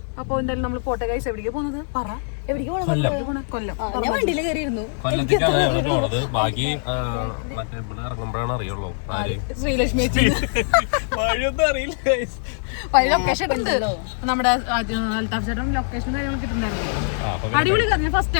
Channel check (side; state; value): right; silent; digital silence